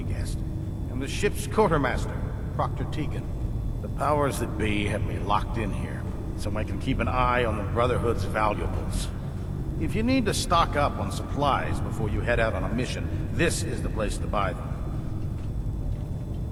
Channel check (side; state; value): both; identical; correlation 1.00